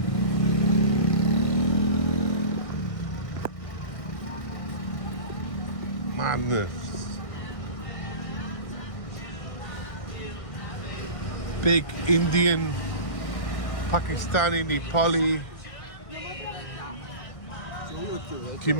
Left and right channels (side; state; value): right; late; 1.6 ms